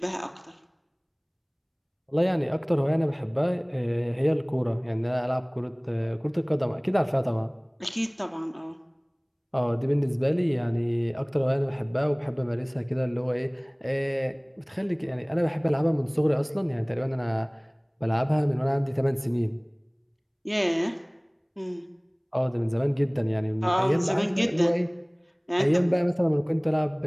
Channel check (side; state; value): both; identical; correlation 1.00